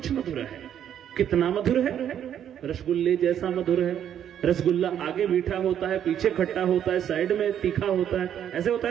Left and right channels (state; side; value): quieter; left; 9.7 dB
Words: मधुर है। कितना मधुर है? रसगुल्ले जैसा मधुर है। रसगुल्ला आगे मीठा होता है, पीछे खट्टा होता है, साइड में तीखा होता है, ऐसे होता